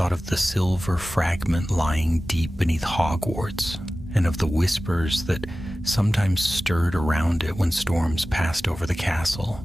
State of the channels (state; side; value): normal; both; correlation 0.96